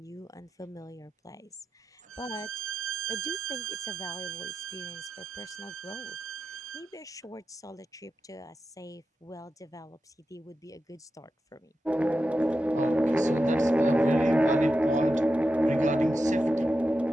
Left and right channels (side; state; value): both; normal; correlation 0.90